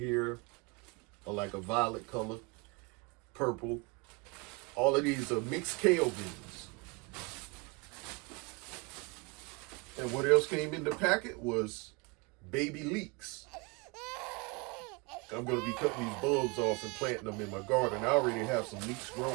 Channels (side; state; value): left; quieter; 28.2 dB